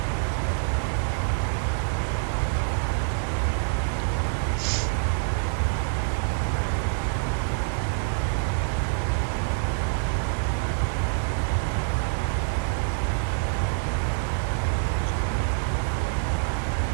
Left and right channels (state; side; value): silent; left; 61 dB below the other